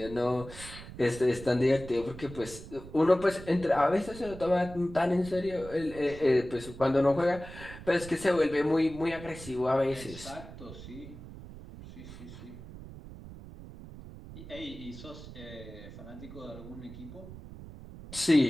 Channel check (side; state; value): right; noise; rumble, 14 dB below the sound